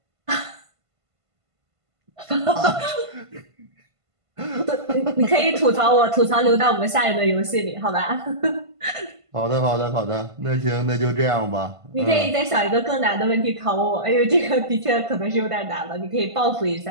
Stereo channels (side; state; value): left; late; 1.5 ms